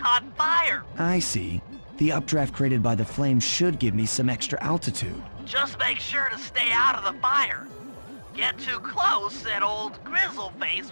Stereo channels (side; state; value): both; inverted; correlation -1.00